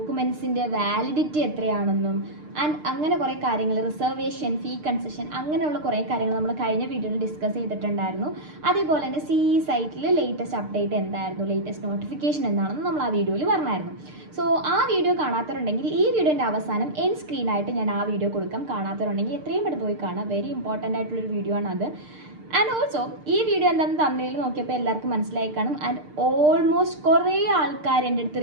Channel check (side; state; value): left; late; 6.6 ms